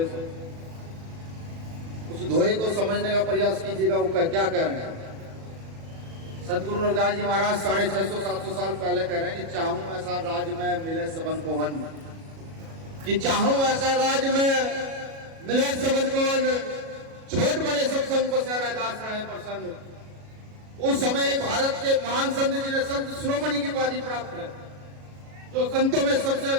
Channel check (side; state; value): left; late; 37 ms